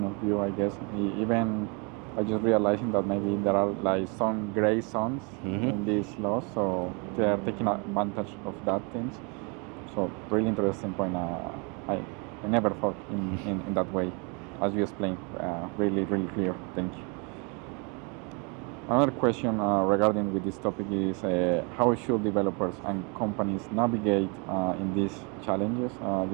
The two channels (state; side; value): quieter; left; 33.1 dB